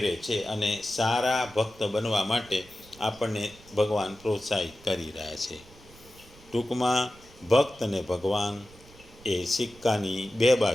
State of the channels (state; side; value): noise; right; rumble, 23 dB below the sound